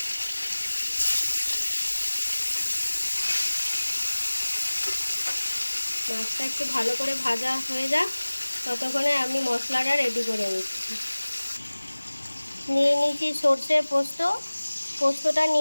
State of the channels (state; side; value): inverted; both; correlation -1.00